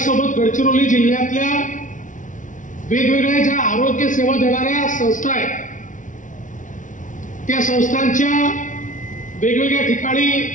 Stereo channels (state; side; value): late; right; 0.37 ms